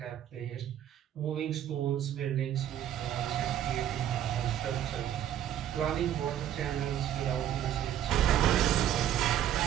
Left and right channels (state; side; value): quieter; left; 10.9 dB